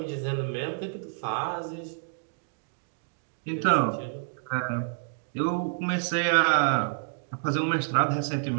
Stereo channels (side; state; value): left; silent; digital silence